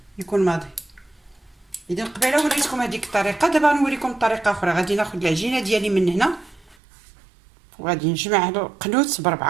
يكون ماضي. اذا قبيله وريتكم هذيك الطريقه، دابا نوريكم طريقه اخرى. غادي ناخد العجينه ديالي من هنا وغادي نجمع هادو قنوت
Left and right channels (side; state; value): left; drops out; at 6.8 s